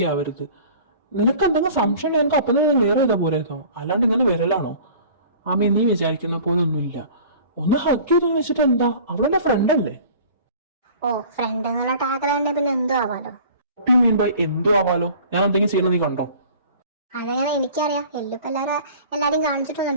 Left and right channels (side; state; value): both; inverted; correlation -0.45